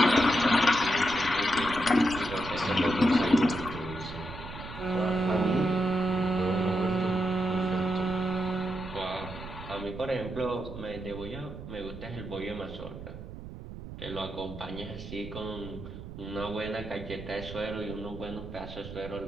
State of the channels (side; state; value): right; noise; rumble, 11 dB below the sound